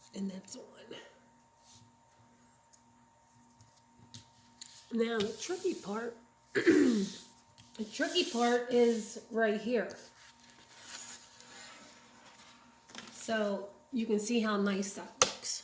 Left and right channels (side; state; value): both; identical; correlation 1.00